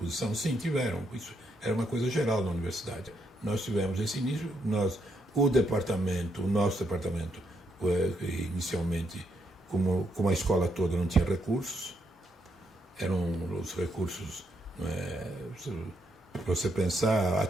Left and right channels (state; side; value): normal; both; correlation 0.77